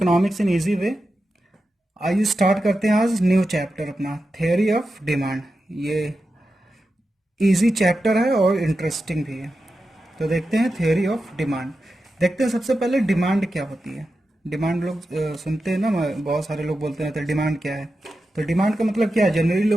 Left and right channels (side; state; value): both; normal; correlation 0.91